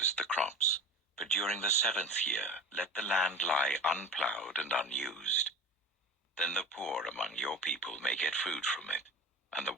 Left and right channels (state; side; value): normal; both; correlation 0.33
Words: the crops, but during the 7th year let the land lie unplowed and unused. Then the poor among your people may get food from it, and the